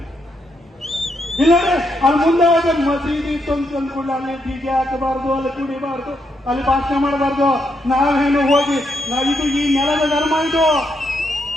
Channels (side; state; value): both; normal; correlation 0.79